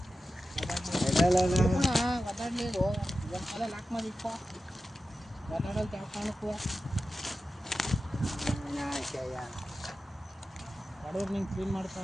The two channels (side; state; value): both; normal; correlation 0.93